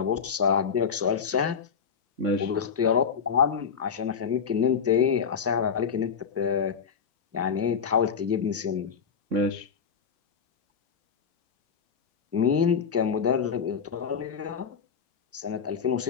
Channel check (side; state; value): right; quieter; 6.5 dB